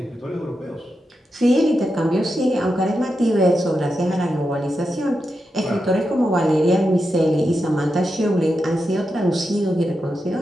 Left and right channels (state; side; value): normal; both; correlation 0.88